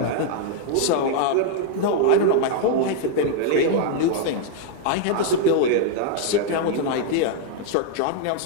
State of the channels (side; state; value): both; different; correlation 0.00